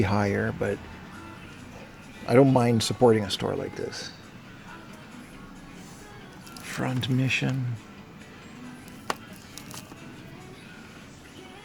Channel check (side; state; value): both; identical; correlation 1.00